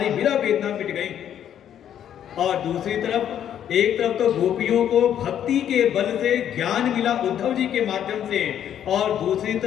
विरह वेदना मिट गई। और दूसरी तरफ एक तरफ तो गोपियों को भक्ति के बल से ज्ञान मिला उद्धव जी के माध्यम से, और दूसरी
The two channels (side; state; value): right; quieter; 10.0 dB